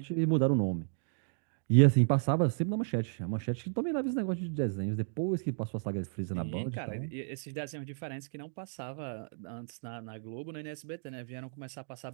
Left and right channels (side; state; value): left; silent; digital silence